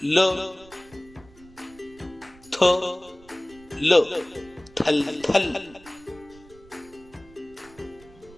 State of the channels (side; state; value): right; noise; rumble, 24 dB below the sound